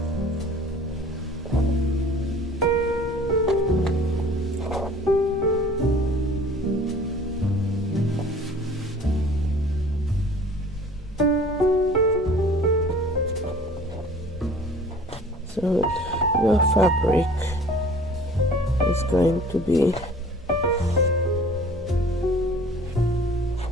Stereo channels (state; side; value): normal; both; correlation 0.48